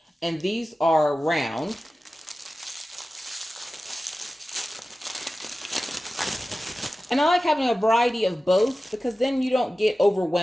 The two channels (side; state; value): both; normal; correlation 0.95